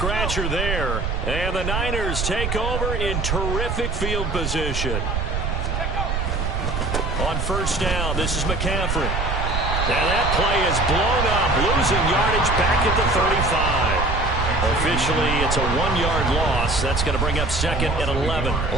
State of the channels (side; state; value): right; noise; rumble, 1 dB below the sound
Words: there. And the Niners take over in terrific field position. On 1st down, this is McCaffrey. Now that play is blown up, losing yardage back at the 35. Officially, it's a 1-yard loss. That's going to bring up 2nd and 11. I